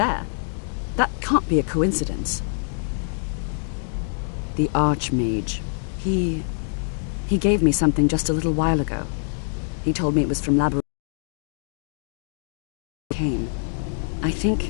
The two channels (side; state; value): right; silent; digital silence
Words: That can't be a coincidence. The Archmage. He gave me something just a little while ago. He told me it was from Labyrinth. Came. I